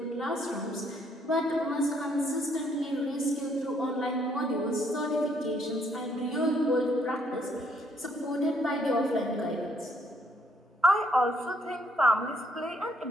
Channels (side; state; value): both; normal; correlation 0.68